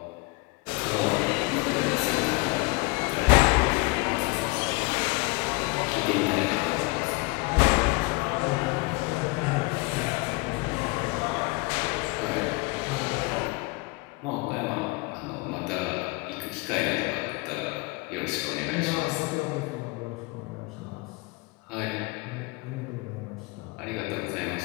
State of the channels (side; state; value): right; quieter; 26.1 dB